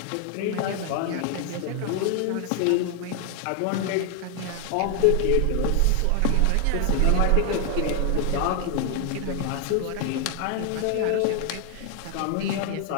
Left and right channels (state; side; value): different; both; correlation 0.00